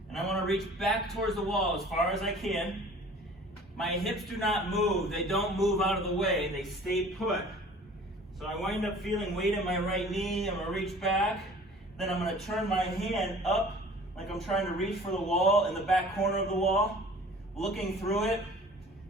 And I want to reach back towards the wall as far as I can. My hips do not move. They don't move out of the way. They stay put. So I wind up feeling weight in my right knee. I'm going to reach back. Then I'm going to turn my hand up like I'm trying to reach for the wall in the back corner of the wall, looking through it.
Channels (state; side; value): normal; both; correlation 0.47